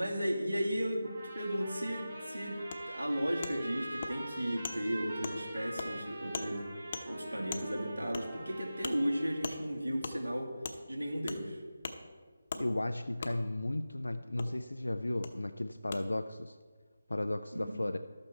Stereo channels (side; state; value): both; inverted; correlation -0.95